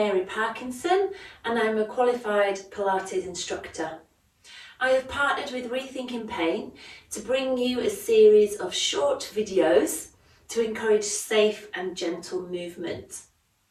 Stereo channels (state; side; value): identical; both; correlation 1.00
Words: Parkinson and I'm a qualified Pilates instructor. I have partnered with Rethinking Pain to bring you a series of short videos to encourage safe and gentle movement,